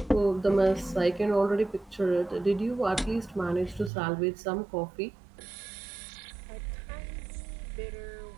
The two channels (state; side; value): drops out; left; at 3.9 s